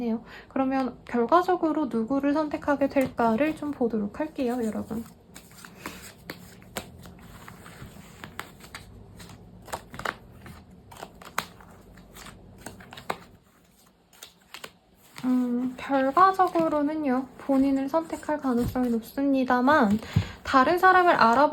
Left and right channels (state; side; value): identical; both; correlation 1.00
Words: 그러면 결과적으로 누구를 선택하게 될까를 좀 보도록 할게요, 여러분. 결과적으로는요, 본인을 선택할 가능성이 높습니다만, 다른 사람을